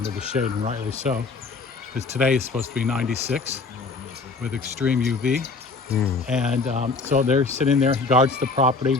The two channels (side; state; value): right; quieter; 4.1 dB